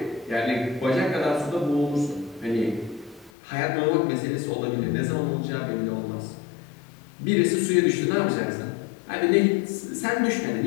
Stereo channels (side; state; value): right; drops out; at 3.3 s